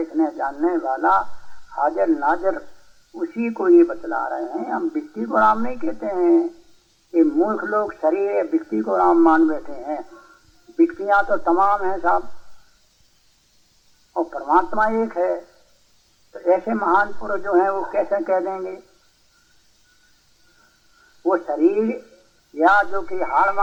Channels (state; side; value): identical; both; correlation 1.00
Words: जानने वाला हाजिर नाजिर, उसी को ये बतला रहे हैं। हम व्यक्ति को राम नहीं कहते हैं। ये मूर्ख लोग शरीर व्यक्ति को राम मान बैठे हैं। व्यक्तियां तो तमाम हैं साहब, और परमात्मा एक है। तो ऐसे महान पुरुष जो हैं वो कैसे कह देंगे वो शरीर या जो कि हाड़